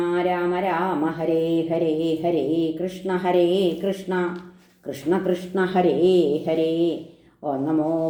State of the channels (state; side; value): identical; both; correlation 1.00